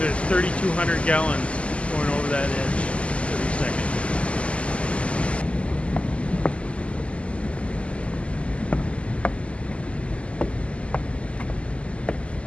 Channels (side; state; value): right; late; 0.058 ms